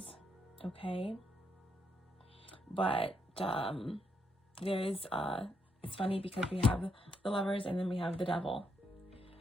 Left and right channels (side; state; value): both; normal; correlation 0.77